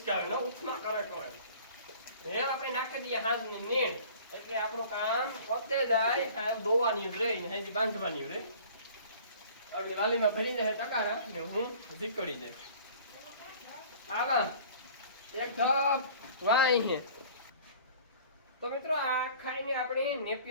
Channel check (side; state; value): both; inverted; correlation -0.47